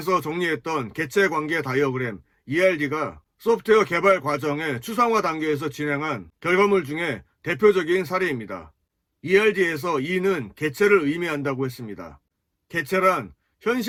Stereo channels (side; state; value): both; identical; correlation 1.00